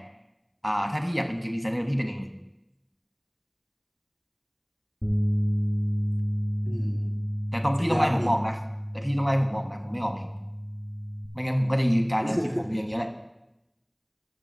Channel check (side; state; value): both; identical; correlation 1.00